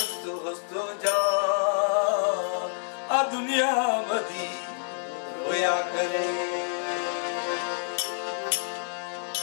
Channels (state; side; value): silent; right; digital silence